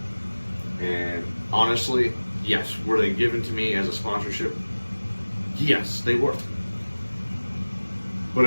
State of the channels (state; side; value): inverted; both; correlation -1.00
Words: And honestly, yes, were they given to me as a sponsorship? Yes, they were. But